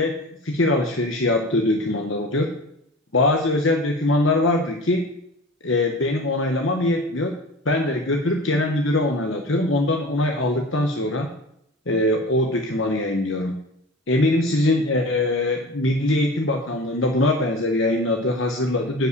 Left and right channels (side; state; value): both; normal; correlation 0.36